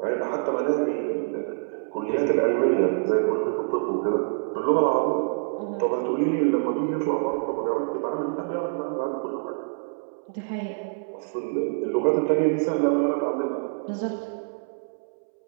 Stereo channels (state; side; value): silent; left; 61 dB below the other